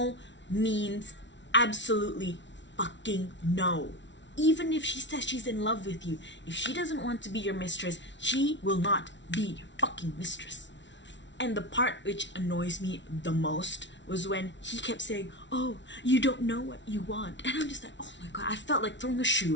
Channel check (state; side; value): late; right; 0.53 ms